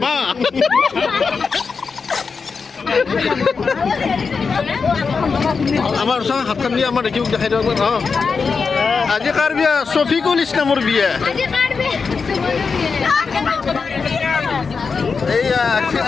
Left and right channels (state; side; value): quieter; right; 5.1 dB